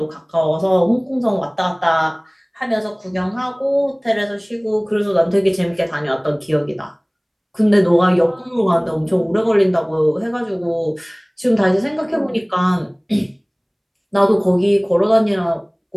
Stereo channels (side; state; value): both; identical; correlation 1.00